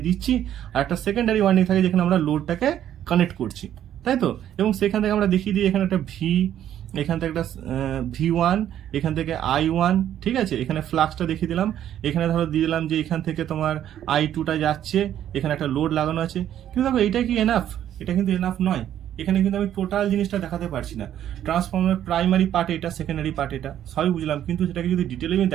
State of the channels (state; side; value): quieter; left; 10.9 dB